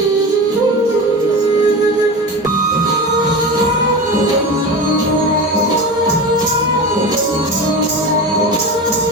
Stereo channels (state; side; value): normal; both; correlation 0.27